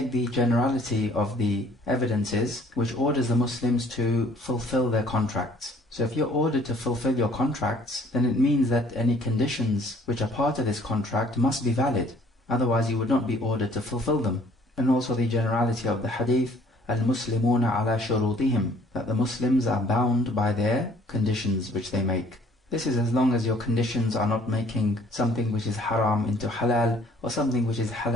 the generality of the evidences which orders the Muslims to fulfill their contracts. So if you're ordered to fulfill your contracts, then it means that any conditions which are part of this contract must be valid. Otherwise you would not be ordered to fulfill them. And also the generality of the hadith, al-Muslimuna ala shurutihim, that the Muslims are bound by their conditions which they make. This is as long as your conditions are not making something which is haram into halal, or something which is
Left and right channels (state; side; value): normal; both; correlation 0.58